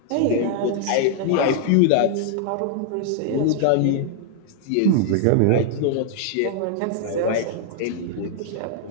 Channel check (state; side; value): different; both; correlation 0.00